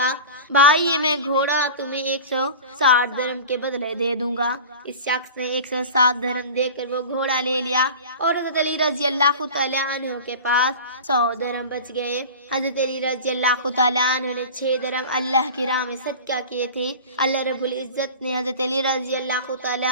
بھائی، یہ میں گھوڑا تمہیں 160 درہم کے بدلے دے دوں گا۔ اس شخص نے 160 درہم دے کر وہ گھوڑا لے لیا اور حضرت علی رضی اللہ تعالیٰ عنہ کے پاس 100 درہم بچ گئے۔ حضرت علی رضی اللہ تعالیٰ عنہ نے 6 درہم اللہ کی راہ میں صدقہ کیے تھے۔ اللہ رب العزت نے حضرت علی رضی اللہ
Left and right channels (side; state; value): both; inverted; correlation -0.35